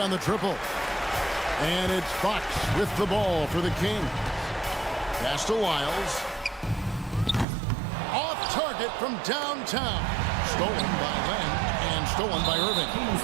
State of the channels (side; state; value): left; drops out; at 7.5 s